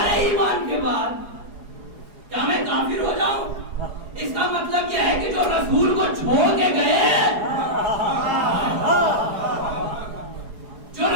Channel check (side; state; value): left; late; 4.8 ms